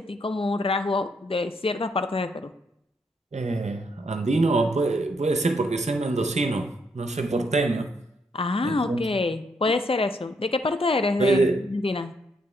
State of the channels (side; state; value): both; normal; correlation 0.75